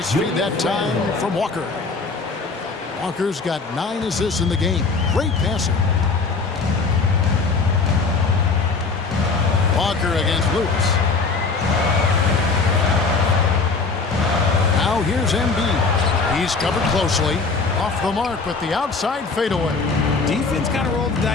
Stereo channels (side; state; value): right; quieter; 4.3 dB